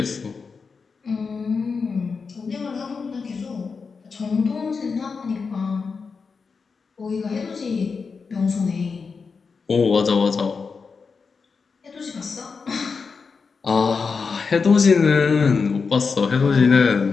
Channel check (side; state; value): right; quieter; 5.1 dB